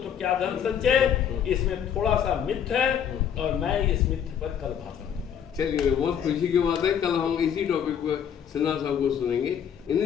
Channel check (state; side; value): quieter; right; 8.5 dB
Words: क्या धन संचय। इसमें थोड़ा सा मिथ है और मैं इस मिथ पर कल भाषण दूंगा। चलिए, बहुत खुशी की बात है, कल हम इसी टॉपिक पर सिन्हा साहब को सुनेंगे।